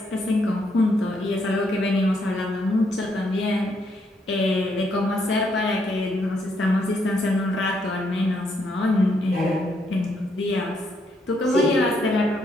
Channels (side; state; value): both; normal; correlation 0.75